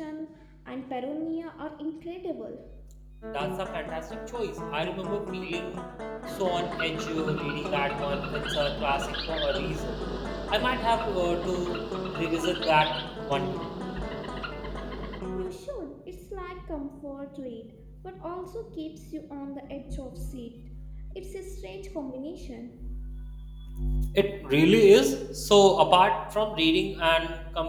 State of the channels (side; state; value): both; identical; correlation 1.00